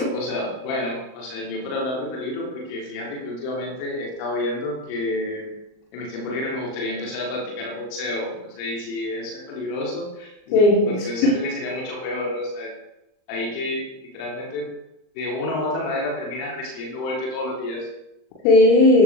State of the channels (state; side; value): late; right; 39 ms